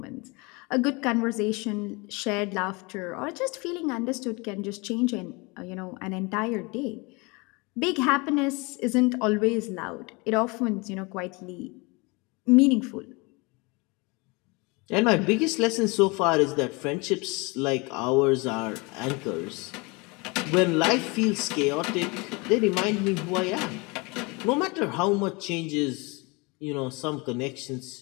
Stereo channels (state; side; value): quieter; right; 27.4 dB